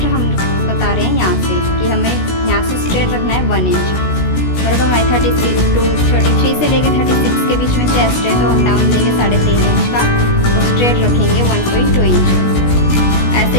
हम बता रहे हैं यहाँ से कि हमें यहाँ से स्ट्रेट रखना है 1 इंच। और अगर हमारी 33 से लेकर 36 के बीच में चेस्ट है तो हम डाउन देंगे 3.5 इंच का और स्ट्रेट रखेंगे 1.2 इंच। ऐसे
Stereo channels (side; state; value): right; late; 16 ms